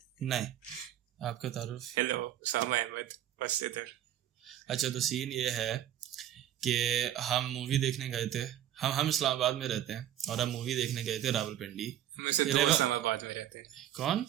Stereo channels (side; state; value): left; quieter; 11.6 dB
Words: नहीं, आपका तारुफ। हेलो, उसामा अहमद, बस इधर। अच्छा, तो सीन ये है कि हम मूवी देखने गए थे। हम इस्लामाबाद में रहते हैं और हम मूवी देखने गए थे रावलपिंडी। हम में से 2 इस्लामाबाद में रहते हैं। कौन?